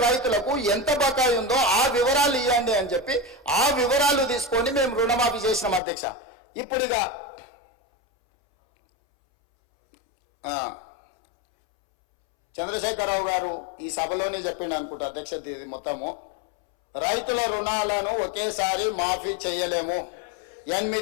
రైతులకు ఎంత బకాయి ఉందో ఆ వివరాలు ఇవ్వండి అని చెప్పి ఆ వివరాలు తీసుకొని మేము రుణమాఫీ చేసినాం అధ్యక్ష. ఇప్పుడుగా చంద్రశేఖరరావు గారు ఈ సభలోనే చెప్పిండు అనుకుంటా అధ్యక్ష. ఇది మొత్తము రైతుల రుణాలను ఒకేసారి మాఫీ చేయలేము,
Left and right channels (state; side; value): drops out; right; at 5.8 s